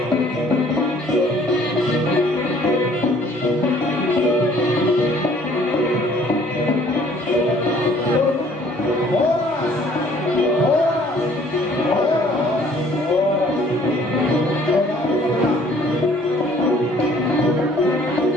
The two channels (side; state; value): both; normal; correlation 0.57